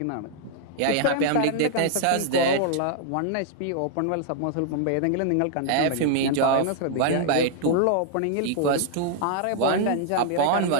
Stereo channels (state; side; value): different; both; correlation -0.01